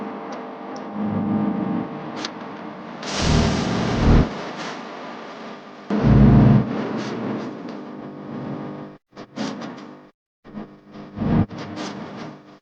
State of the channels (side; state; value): both; identical; correlation 1.00